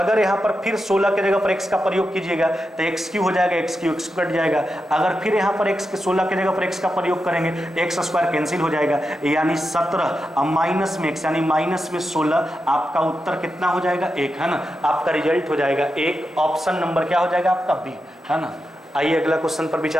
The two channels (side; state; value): both; normal; correlation 0.88